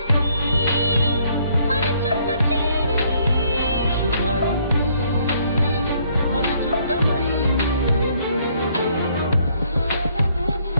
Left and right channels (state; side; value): inverted; both; correlation -0.66